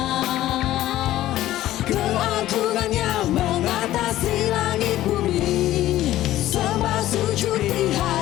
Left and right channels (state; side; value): quieter; right; 14.5 dB